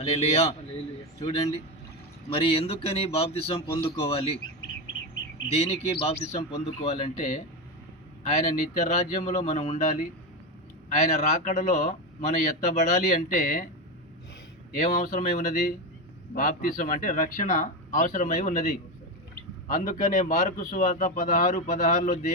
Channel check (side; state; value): both; normal; correlation 0.14